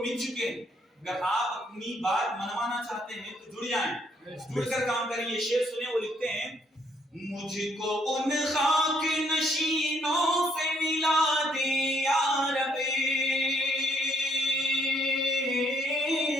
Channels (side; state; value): both; normal; correlation 0.69